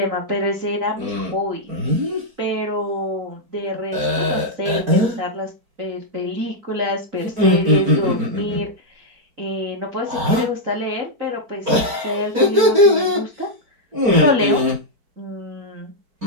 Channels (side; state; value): left; late; 4.6 ms